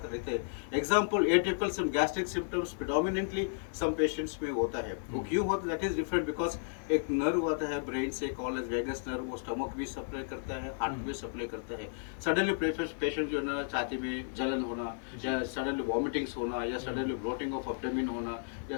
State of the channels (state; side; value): silent; right; digital silence